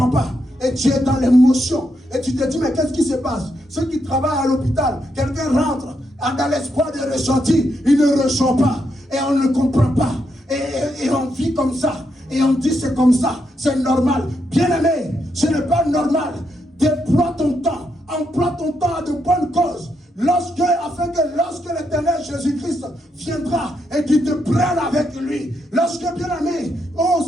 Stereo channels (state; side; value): normal; both; correlation 0.80